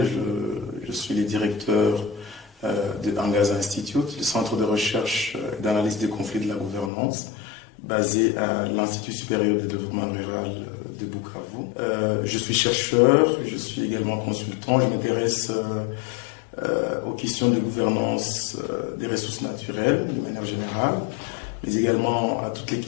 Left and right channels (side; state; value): right; drops out; at 6.9 s